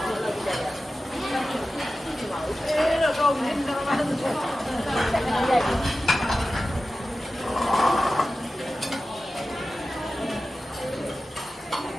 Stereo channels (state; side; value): normal; both; correlation 0.94